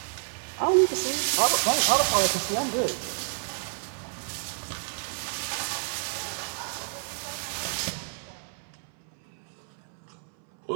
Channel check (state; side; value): silent; left; 59 dB below the other